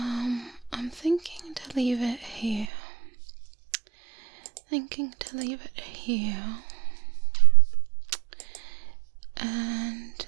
thinking to leave it here. And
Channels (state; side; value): drops out; left; at 2.7 s